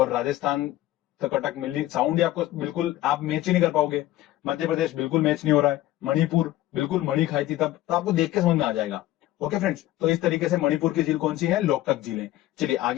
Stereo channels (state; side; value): quieter; right; 15.2 dB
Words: राजस्थान तो कटक मिली, साउंड ही आपको बिल्कुल आप मैच ही नहीं कर पाओगे। मध्य प्रदेश बिल्कुल मैच नहीं हो रहा है। मणिपुर बिल्कुल मणि खाई थी तब, तो आपको देख के समझ में आ जाएगा। ओके फ्रेंड्स, तो इस तरीके से मणिपुर की झील कौन सी है? लोकटक झील है। चलिए